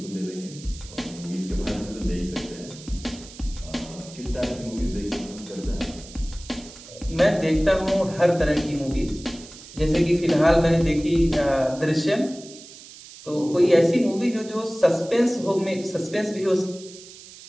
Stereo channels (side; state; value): right; noise; hiss, 18 dB below the sound